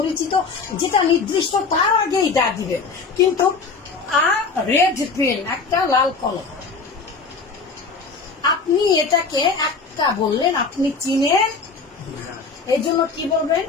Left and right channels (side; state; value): right; quieter; 4.6 dB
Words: যেটা নির্দিষ্ট, তার আগেই দা দিবেন। কিন্তু রেড পেন, একটা লাল কলম, আপনি এটাকে একটা বললেন, আপনি চিনেন, এই জন্য কি বলবেন?